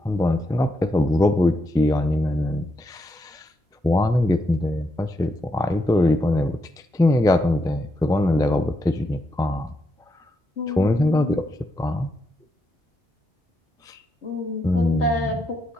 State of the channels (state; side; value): normal; both; correlation 0.82